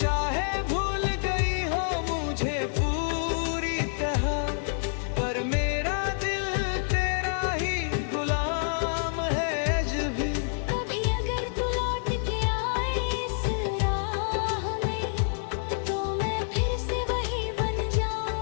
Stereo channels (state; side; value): silent; right; 60 dB below the other